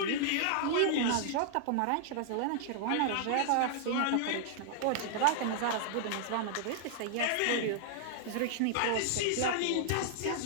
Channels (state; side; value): different; both; correlation -0.01